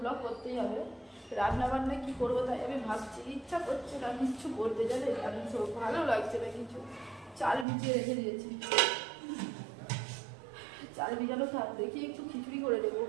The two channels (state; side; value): drops out; left; at 7.7 s